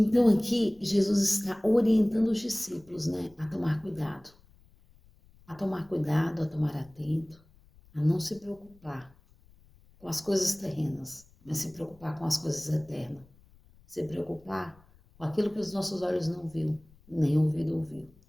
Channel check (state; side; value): noise; left; rumble, 28 dB below the sound